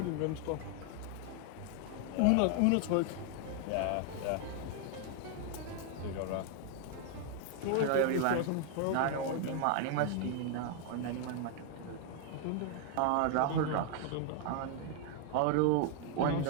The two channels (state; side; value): different; both; correlation 0.00